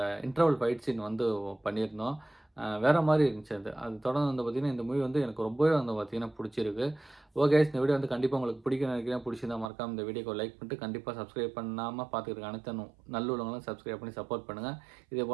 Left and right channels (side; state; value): left; drops out; at 9.7 s